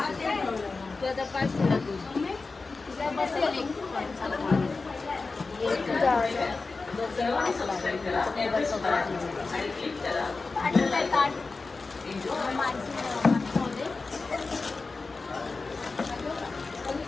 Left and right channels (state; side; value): quieter; right; 4.0 dB